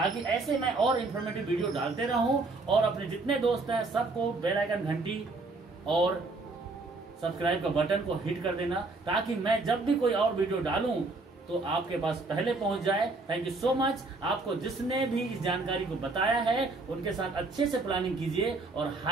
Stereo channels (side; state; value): left; quieter; 3.5 dB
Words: ऐसे मैं और इन्फॉर्मेटिव वीडियो डालते रहूं, और अपने जितने दोस्त हैं सबको बेल आइकन, घंटी और सब्सक्राइब का बटन को हिट कर देना, ताकि मैं जब भी कोई और वीडियो डालूं तो आपके पास पहले पहुंच जाए। Thank you so much. आपको जिसने भी इस जानकारी को बताया है उनके साथ अच्छे से प्लानिंग कीजिए और